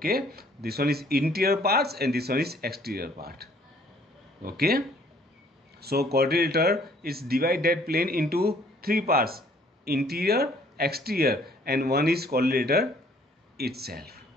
this one is interior parts and this one is exterior part. Okay, so quadrilateral is divide that plane into 3 parts, interior, exterior, and one is quadrilateral itself.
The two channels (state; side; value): normal; both; correlation 0.60